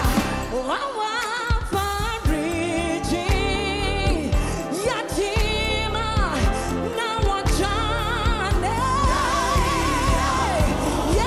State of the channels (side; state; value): both; identical; correlation 1.00